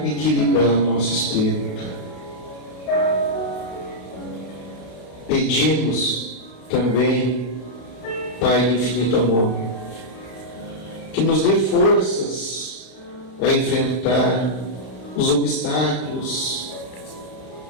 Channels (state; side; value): late; right; 32 ms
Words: equilibrar o nosso espírito. Pedimos também, Pai do infinito amor, que nos dê forças a enfrentar os obstáculos